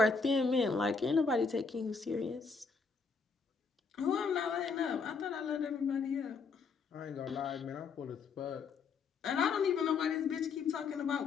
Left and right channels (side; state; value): right; quieter; 4.9 dB